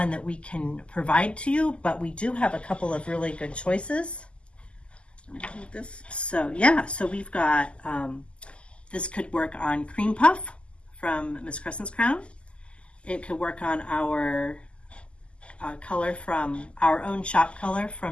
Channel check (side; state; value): right; late; 0.053 ms